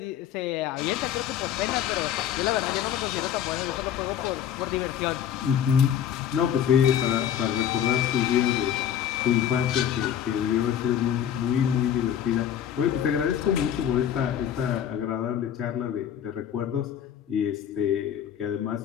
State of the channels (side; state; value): right; quieter; 9.6 dB